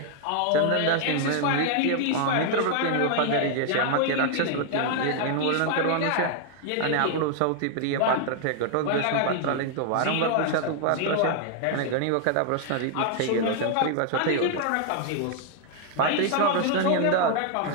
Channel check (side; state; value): both; different; correlation 0.00